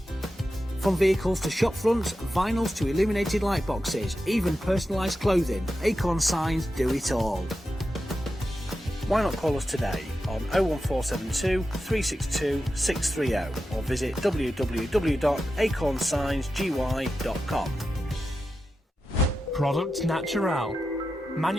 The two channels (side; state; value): both; normal; correlation 0.90